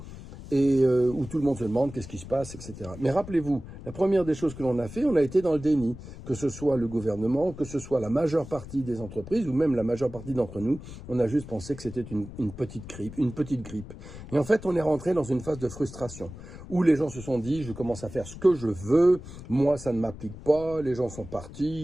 Et où tout le monde se demande qu'est-ce qui se passe, etc. Mais rappelez-vous, la première des choses que l'on a fait, on a été dans le déni, que ce soit le gouvernement, que ce soit la majeure partie des entreprises, ou même la majeure partie d'entre nous, on a juste pensé que c'était une petite grippe. Et en fait, on est rentré dans une phase de frustration, où les gens se sont dit, je commence à faire ce que je veux, moi ça ne m'applique pas, les gens sont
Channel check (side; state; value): left; noise; rumble, 14 dB below the sound